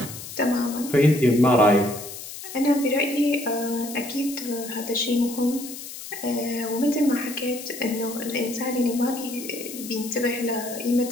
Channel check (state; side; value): noise; left; hiss, 11 dB below the sound